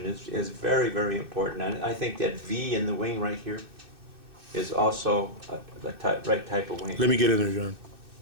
is very, very important. And I think that V in the wing right here is also the right type of wing. Let me get in there, John.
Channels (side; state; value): left; late; 2.6 ms